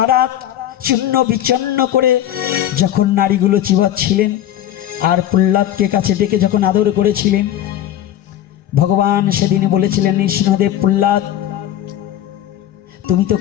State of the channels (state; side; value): quieter; right; 11.8 dB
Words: চূর্ণ বিচন্ন করে যখন নারীগুলো চিবাচ্ছিলেন আর প্রহ্লাদকে কাছে ডেকে যখন আদর করেছিলেন, ভগবান সেদিনে বলেছিলেন, নৃসিংহদেব, প্রহ্লাদ, তুমি তো